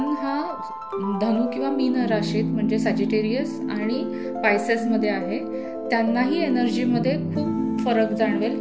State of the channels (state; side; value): identical; both; correlation 1.00